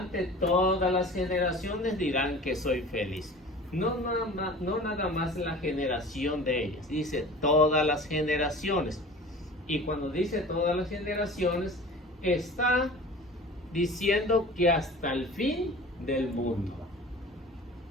todas las generaciones dirán que soy feliz. No nada más la generación de ellas, dice todas las generaciones. Y cuando dice todas las generaciones, está diciendo que hasta el fin del mundo.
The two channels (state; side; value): normal; both; correlation 0.41